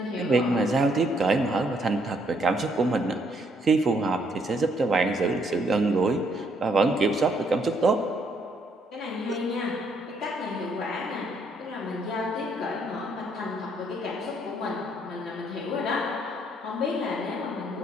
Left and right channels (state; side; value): normal; both; correlation 0.70